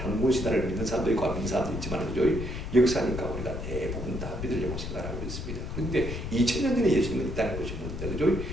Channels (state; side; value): noise; left; rumble, 5 dB below the sound